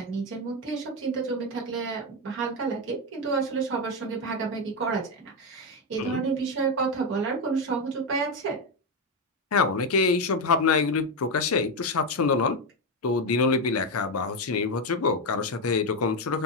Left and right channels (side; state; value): both; normal; correlation 0.08